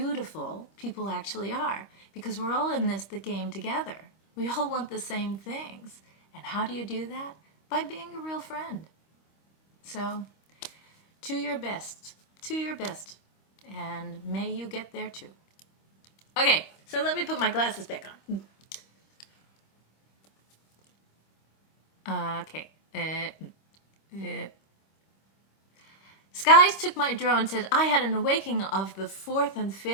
people actually are, because we're all in the game together. We all want the same things. And how do you do that? By being a real friend. So, to your best, and may you get there too. Okay, so let me put my glasses back on. Okay. Skies took my drone, said, I had an awakening of the fourth and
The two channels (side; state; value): right; late; 25 ms